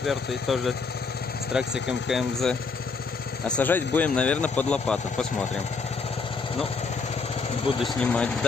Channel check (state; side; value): quieter; right; 4.6 dB